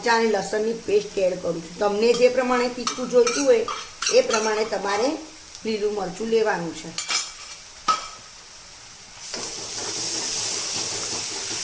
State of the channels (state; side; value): identical; both; correlation 1.00